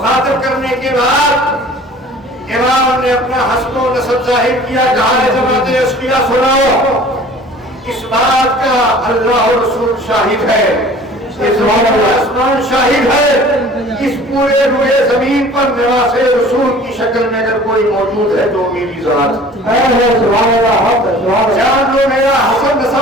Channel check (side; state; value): both; normal; correlation 0.47